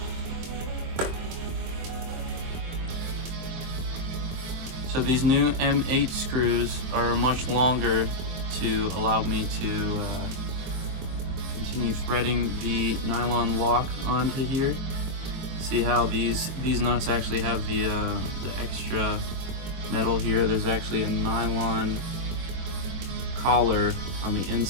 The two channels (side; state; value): left; late; 23 ms